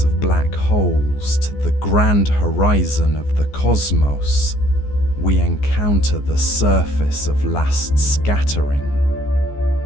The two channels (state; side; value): late; right; 14 ms